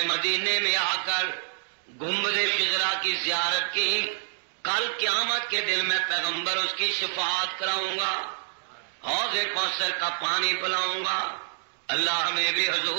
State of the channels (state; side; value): silent; left; digital silence